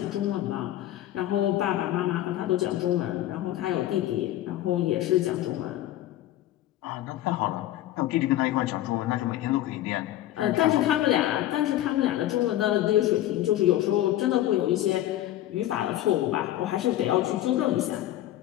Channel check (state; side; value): quieter; right; 13.8 dB